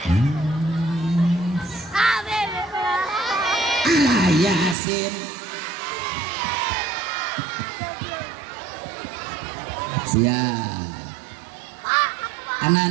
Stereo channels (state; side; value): drops out; left; at 4.8 s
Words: Alah Yasin. Siap.